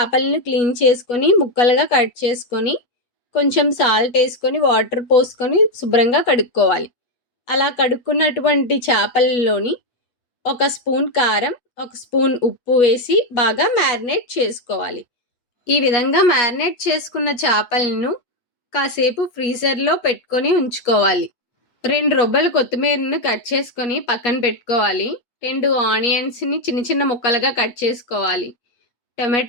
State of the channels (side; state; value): right; late; 8.2 ms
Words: క్లీన్ చేసుకొని ముక్కలుగా కట్ చేసుకొని కొంచెం సాల్ట్ వేసుకొని వాటర్ పోసుకొని శుభ్రంగా కడుక్కోవాలి. అలా కడుక్కున్నటువంటి చేపలలోని ఒక స్పూన్ కారం, ఒక స్పూన్ ఉప్పు వేసి బాగా మ్యారినేట్ చేసుకోవాలి. ఈ విధంగా మ్యారినేట్ చేసుకున్న చేపలను కాసేపు ఫ్రీజర్లో పెట్టుకొని ఉంచుకోవాలి. 2 రొబ్బలు కొత్తిమీరను కట్ చేసుకొని పక్కన పెట్టుకోవాలి. 2 ఆనియన్స్ని చిన్న చిన్న ముక్కలుగా కట్ చేసుకోవాలి.